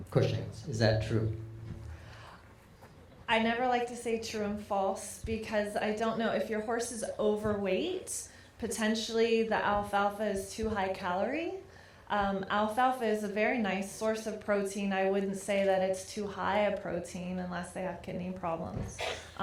Cushing's. Is that true? I never like to say true and false, because I don't know if your horse is overweight. Potentially the alfalfa is too high calorie. Alfalfa is a very nice source of protein. I wouldn't say that it's too high a protein unless they have kidney problems.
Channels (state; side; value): identical; both; correlation 1.00